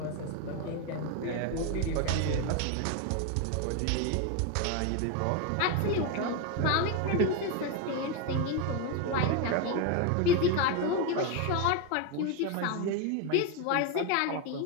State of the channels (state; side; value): different; both; correlation 0.02